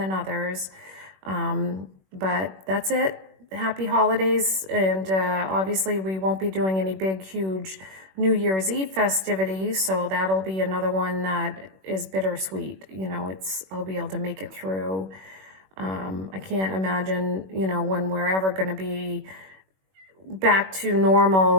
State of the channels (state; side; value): late; left; 21 ms